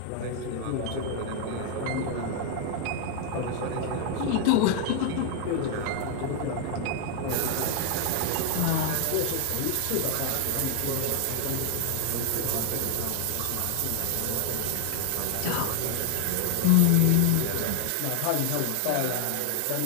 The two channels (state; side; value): different; both; correlation 0.00